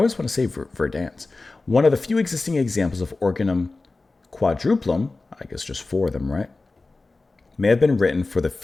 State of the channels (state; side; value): quieter; right; 3.5 dB